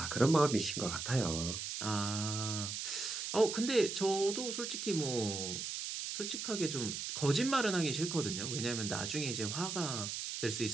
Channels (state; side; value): noise; right; hiss, 4 dB below the sound